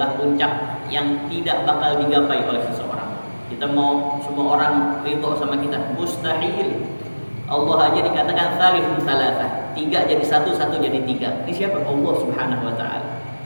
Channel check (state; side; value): inverted; both; correlation -1.00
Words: puncak yang tidak bakal digapai oleh seseorang. Kita mau semua orang ridho sama kita, mustahil. Allah aja dikatakan tsalithun tsalatsa, 3 jadi 1, 1 jadi 3. Ini siapa? Allah Subhanahu wa taala.